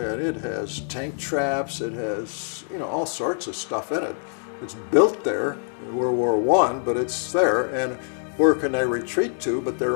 it has tank traps, it has, all sorts of stuff in it. It's built there in World War I, but it's there, and where can they retreat to but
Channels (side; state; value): right; silent; digital silence